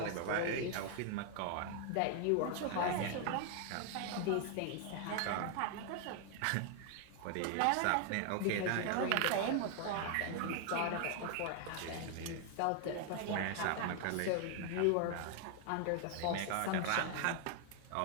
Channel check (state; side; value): different; both; correlation 0.00